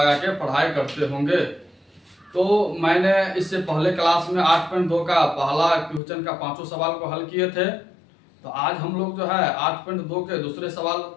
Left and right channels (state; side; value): drops out; right; at 6.0 s